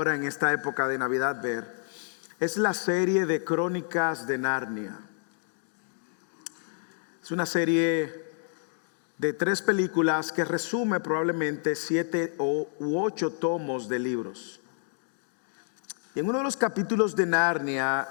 en esta época de Navidad ver, es la serie de Crónicas de Narnia. Es una serie de 3 películas que resume probablemente 7 u 8 tomos de libros. Y en uno de los capítulos de Narnia,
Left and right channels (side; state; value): right; silent; 59 dB below the other